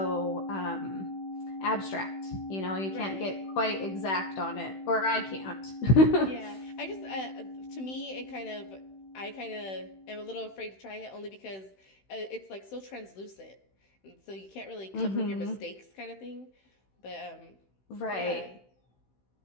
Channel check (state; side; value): late; right; 16 ms